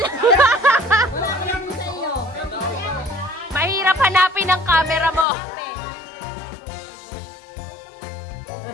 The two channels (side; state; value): right; drops out; at 5.2 s